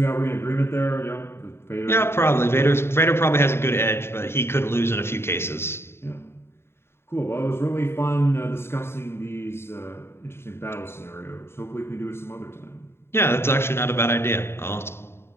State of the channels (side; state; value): right; late; 0.12 ms